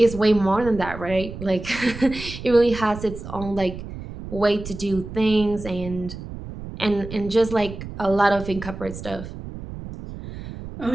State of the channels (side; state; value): right; noise; rumble, 11 dB below the sound